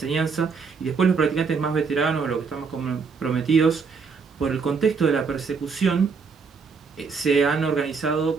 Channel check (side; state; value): left; quieter; 5.2 dB